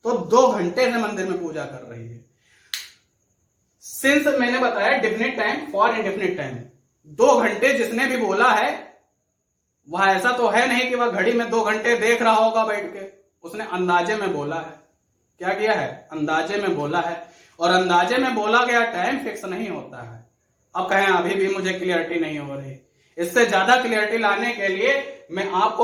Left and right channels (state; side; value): identical; both; correlation 1.00